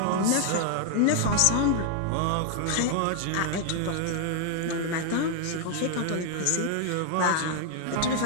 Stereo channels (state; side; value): different; both; correlation 0.00